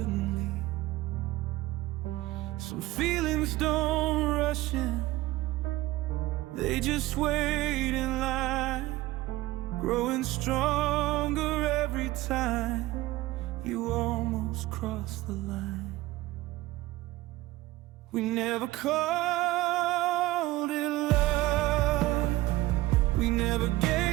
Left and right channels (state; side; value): quieter; left; 17.9 dB